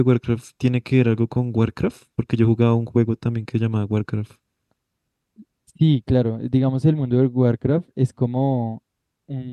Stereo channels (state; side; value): identical; both; correlation 1.00